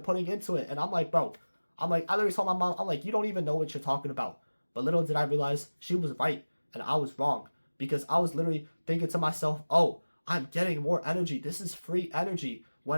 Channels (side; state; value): both; inverted; correlation -1.00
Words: into it. And I'm like, bro, I literally told my mom, I'm like, you don't even know what you're talking about. But little did I realize she was right and I was wrong. Because I was literally thinking to myself, oh, I'm getting more energy. This is free energy.